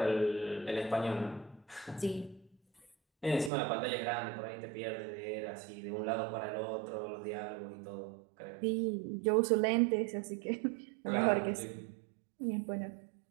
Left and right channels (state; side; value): drops out; left; at 3.5 s